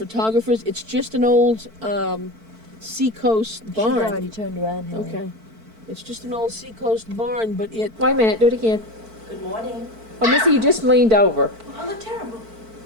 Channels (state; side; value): late; left; 4.5 ms